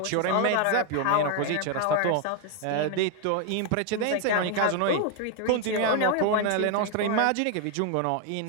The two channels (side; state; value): both; different; correlation 0.01